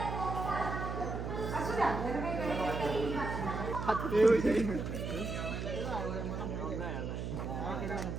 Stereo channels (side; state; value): right; noise; hum, 4 dB below the sound